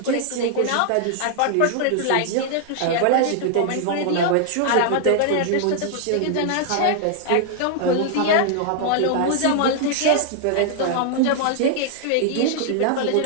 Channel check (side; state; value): both; different; correlation 0.00